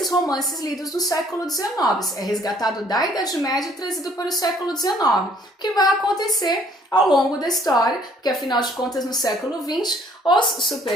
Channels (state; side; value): normal; both; correlation 0.61